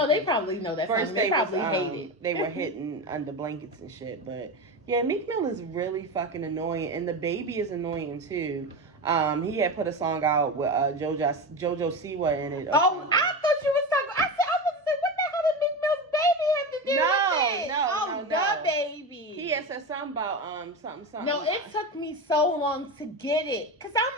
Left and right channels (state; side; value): normal; both; correlation 0.22